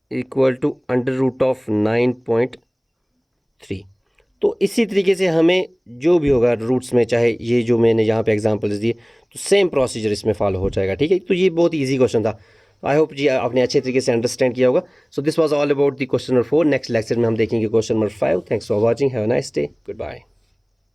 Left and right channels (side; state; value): both; identical; correlation 1.00